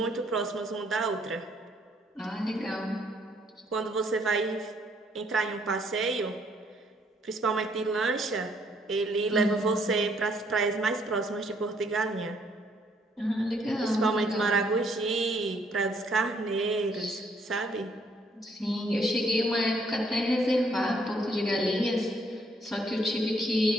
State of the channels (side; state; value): both; normal; correlation 0.68